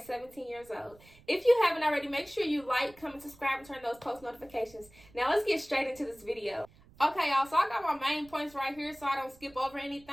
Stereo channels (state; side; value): noise; right; rumble, 25 dB below the sound